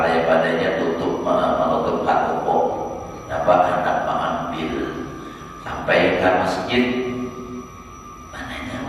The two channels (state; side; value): identical; both; correlation 1.00